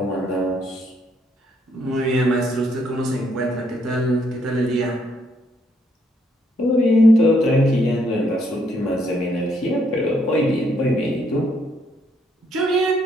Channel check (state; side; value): normal; both; correlation 0.71